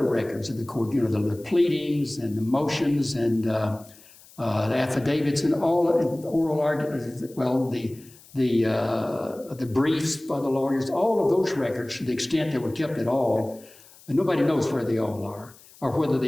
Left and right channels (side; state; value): left; noise; hiss, 24 dB below the sound